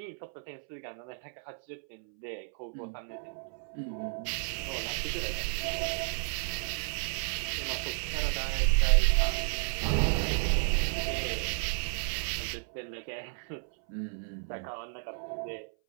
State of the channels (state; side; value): silent; left; 56 dB below the other